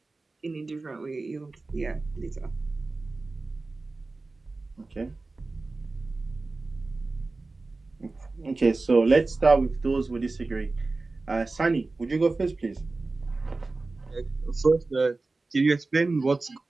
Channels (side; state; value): left; quieter; 3.5 dB